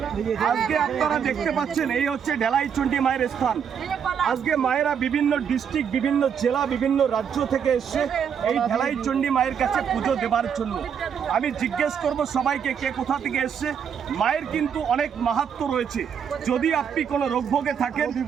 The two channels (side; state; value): left; quieter; 7.6 dB